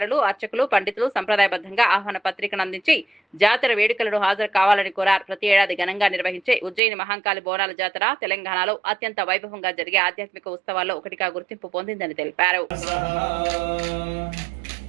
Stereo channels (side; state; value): left; drops out; at 6.8 s